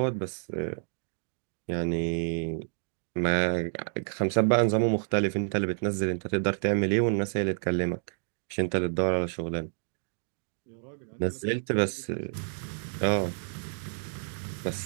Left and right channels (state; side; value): silent; left; digital silence